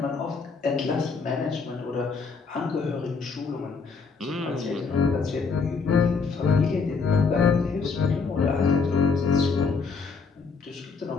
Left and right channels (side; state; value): right; quieter; 4.8 dB